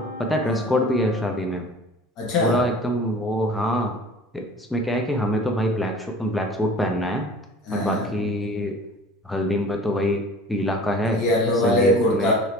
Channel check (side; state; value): both; normal; correlation 0.44